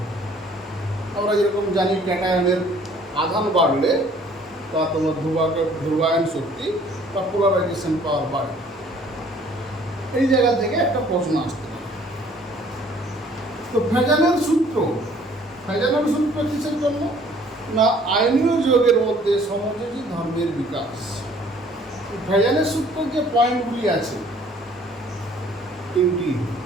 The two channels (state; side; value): normal; both; correlation 0.57